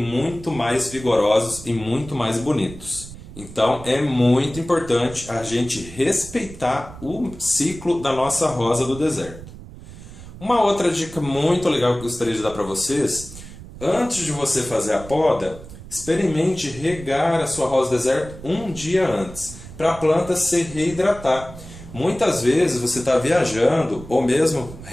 mais vigorosos e muito mais bonitos. Então, é muito importante a gente respeitar o ciclo da nossa rosa do deserto. Uma outra dica muito legal que eu gostaria de dar para vocês: antes de você fazer a poda, experimente regar a sua rosa deserto um dia antes, para a planta se reidratar. Muitas vezes você está viajando, ou mesmo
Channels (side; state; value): right; noise; rumble, 15 dB below the sound